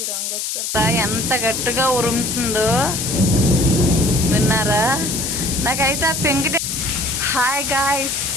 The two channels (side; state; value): left; noise; hiss, 3 dB below the sound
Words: రంగు వచ్చారు. ఎంత గట్టిగా ఉరుముతుందో విన్నారా? నాకైతే ఆ పెంకిటి. హాయ్ గాయ్స్,